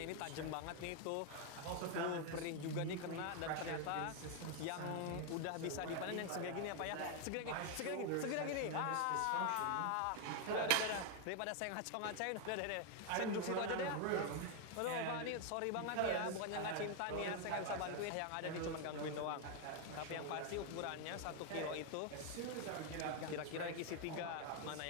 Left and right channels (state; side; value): different; both; correlation 0.01